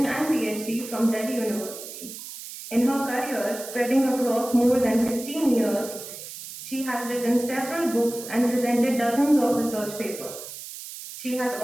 and PhD from Delhi University. In her career, spreading across more than 16 years, she has written several books and presented dozens of research papers. She has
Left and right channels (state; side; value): noise; right; hiss, 12 dB below the sound